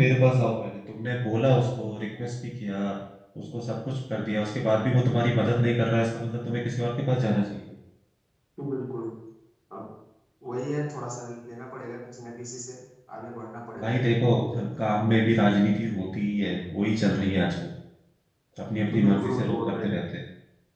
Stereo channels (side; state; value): both; identical; correlation 1.00